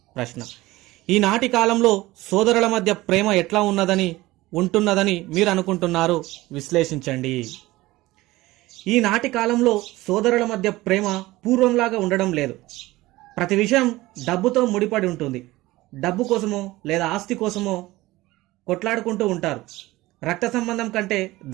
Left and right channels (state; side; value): quieter; left; 18.7 dB